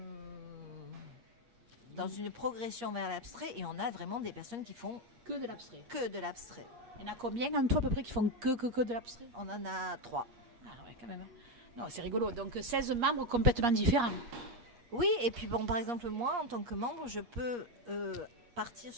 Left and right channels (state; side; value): late; left; 8.4 ms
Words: dans une progression vers l'abstrait, et on a vraiment des personnes qui font que de l'abstrait. Il y en a combien en tout à peu près qui font que de l'abstrait? On en a 3. Ah ouais, quand même. Non, c'est rigolo. Donc 16 membres complètement différents. Oui, et puis par exemple, moi, en tant que membre, je peux partir